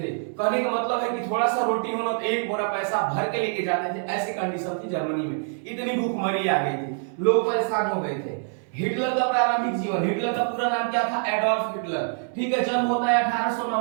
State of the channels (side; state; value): left; silent; 62 dB below the other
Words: कहने का मतलब है कि थोड़ा सा रोटी हो तो एक बोरा पैसा भर के लेके जाते थे। ऐसी कंडीशन थी जर्मनी में, इतनी भूखमरी आ गई थी, लोग परेशान हो गए थे। हिटलर का प्रारंभिक जीवन। हिटलर का पूरा नाम क्या था? Adolf Hitler. ठीक है। जन्म होता है